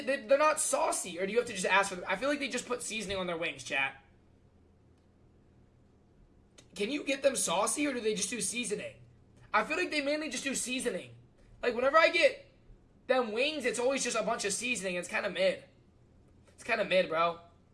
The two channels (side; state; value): both; identical; correlation 1.00